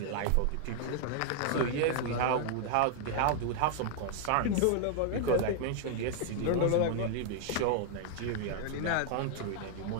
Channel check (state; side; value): different; both; correlation 0.00